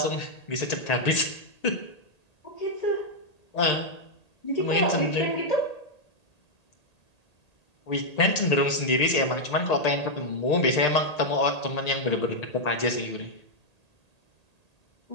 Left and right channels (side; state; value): right; late; 1.8 ms